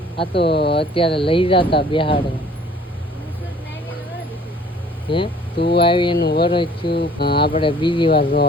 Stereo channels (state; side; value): normal; both; correlation 0.53